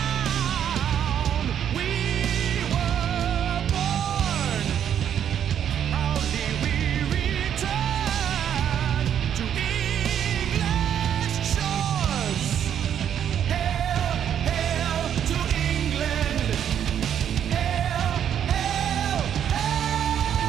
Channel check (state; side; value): quieter; left; 9.3 dB